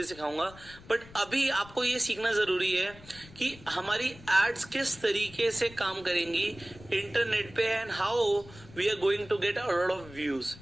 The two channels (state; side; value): noise; left; rumble, 20 dB below the sound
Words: सिखाऊंगा। बट अभी आपको ये सीखना जरूरी है कि हमारी एड्स किस तरीके से काम करेंगी इंटरनेट पे and how we are going to get a lot of views.